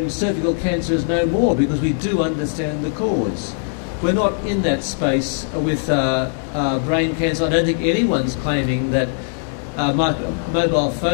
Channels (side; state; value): right; silent; digital silence